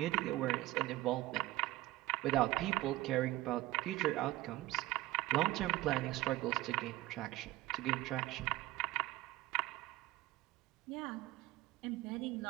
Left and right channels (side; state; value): left; quieter; 17.5 dB